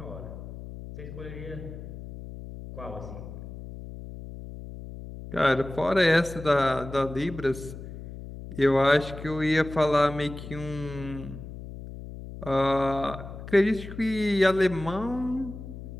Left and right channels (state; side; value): noise; left; hum, 12 dB below the sound